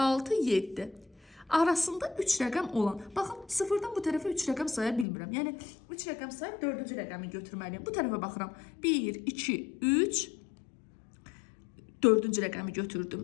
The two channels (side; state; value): right; drops out; at 5.1 s